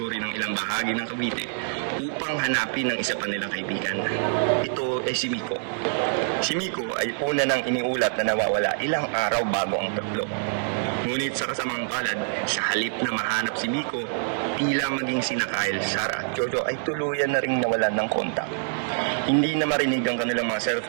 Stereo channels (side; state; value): left; silent; digital silence